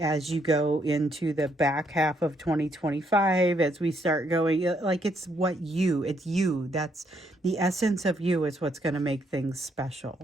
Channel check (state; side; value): normal; both; correlation 0.73